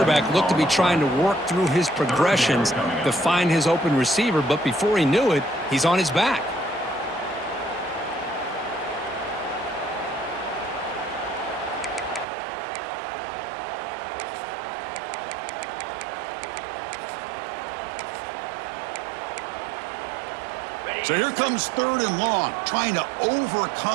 looked to be trying to work through his progressions to find his open receiver, but before he knew it, he's on his back. So here comes third and long, trying to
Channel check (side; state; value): left; drops out; at 12.2 s